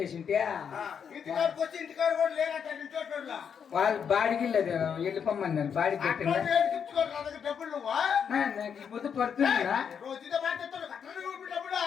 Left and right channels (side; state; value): right; quieter; 7.3 dB